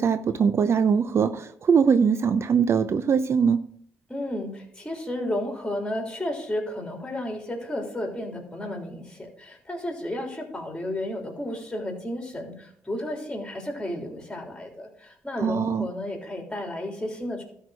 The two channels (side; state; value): left; quieter; 4.3 dB